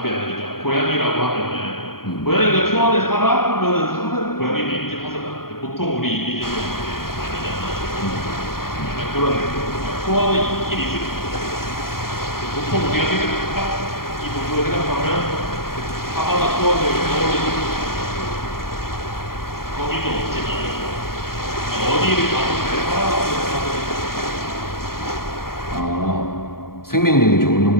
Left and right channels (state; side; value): late; right; 0.93 ms